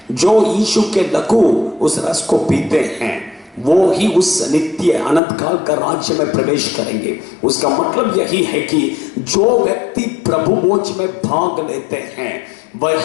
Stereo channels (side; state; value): right; drops out; at 5.2 s